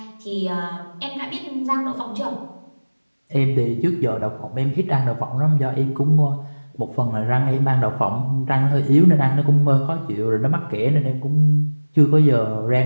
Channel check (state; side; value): inverted; both; correlation -1.00